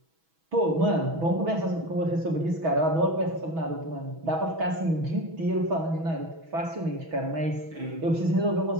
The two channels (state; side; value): late; left; 6.1 ms